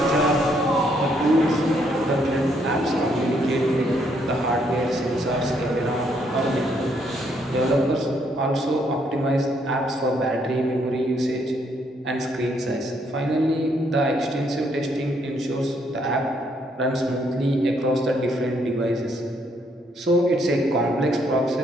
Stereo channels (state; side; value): normal; both; correlation 0.71